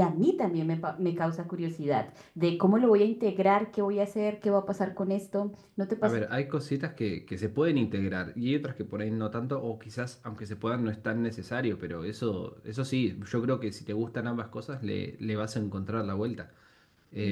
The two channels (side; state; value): both; identical; correlation 1.00